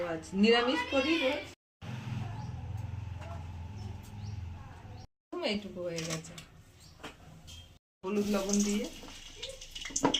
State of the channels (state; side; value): identical; both; correlation 1.00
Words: নিরামিষ করি, এইটুকু হয়ে গেছে। হলুদ লবণ দিয়ে